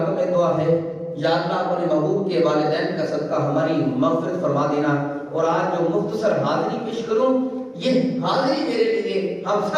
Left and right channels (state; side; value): identical; both; correlation 1.00